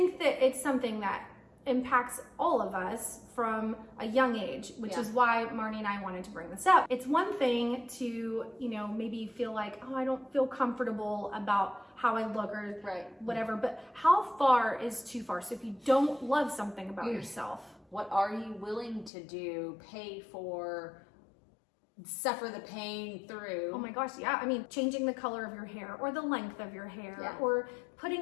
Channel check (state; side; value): drops out; right; at 19.1 s